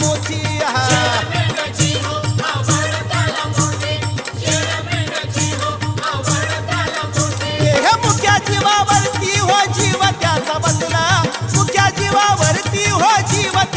मोठी हे मुक्या जीवावरती हो जीव त्याचा बसला मुक्या जीवावरती हो जीव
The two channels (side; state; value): both; identical; correlation 1.00